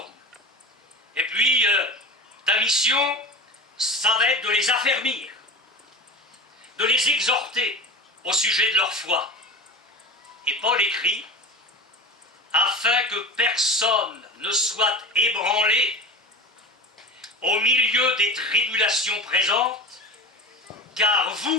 Et puis, ta mission, ça va être de les affermir, de les exhorter au sujet de leur foi. Et Paul écrit, afin que personne ne soit ébranlé au milieu des tribulations présentes, car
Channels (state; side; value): normal; both; correlation 0.32